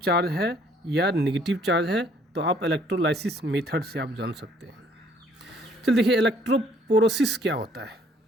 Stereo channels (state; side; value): normal; both; correlation 0.61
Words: चार्ज है या नेगेटिव चार्ज है, तो आप इलेक्ट्रोलाइसिस मेथड से आप जान सकते हैं। चल देखिए इलेक्ट्रोपोरोसिस क्या होता है।